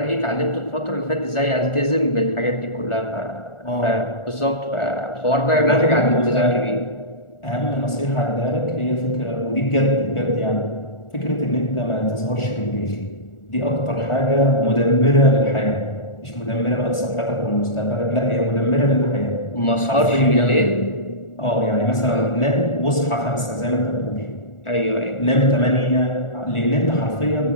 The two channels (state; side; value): late; right; 1.4 ms